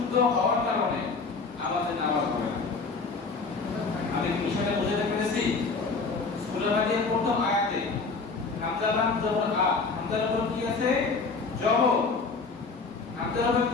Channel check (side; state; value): right; quieter; 4.3 dB